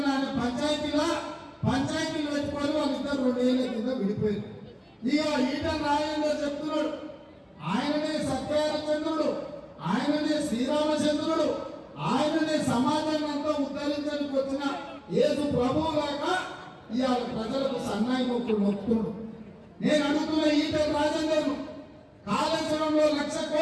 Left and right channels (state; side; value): identical; both; correlation 1.00